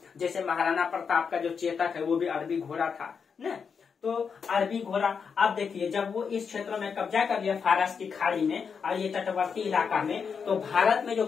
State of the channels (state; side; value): quieter; right; 6.1 dB